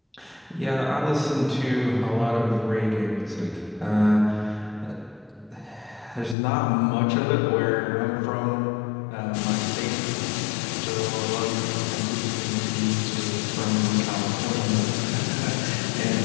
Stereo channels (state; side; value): drops out; right; at 6.4 s